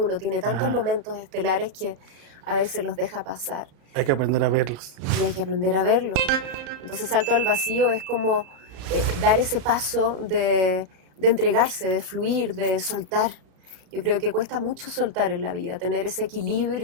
tiene tantos momentos estelares que a veces los deja pasar. Hay que aprender a verlos. Y hay que aprender a verlos. Entonces Salto al Vacío es como dar ese paso de entregarse, de fluir, de soltar. Yo creo que cuesta mucho soltar en la vida, tener ese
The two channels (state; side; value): late; left; 34 ms